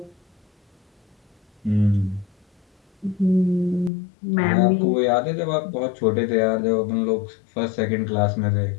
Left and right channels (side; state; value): right; drops out; at 3.9 s